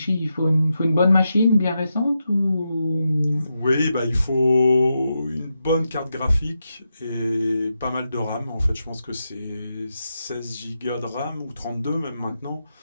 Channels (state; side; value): inverted; both; correlation -0.87